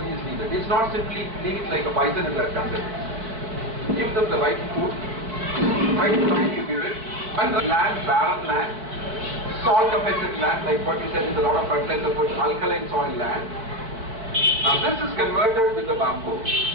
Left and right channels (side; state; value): left; late; 4.5 ms